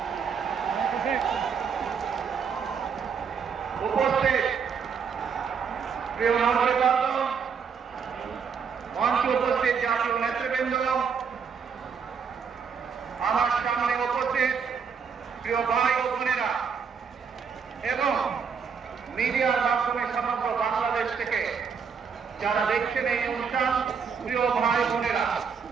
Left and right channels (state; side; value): quieter; left; 6.3 dB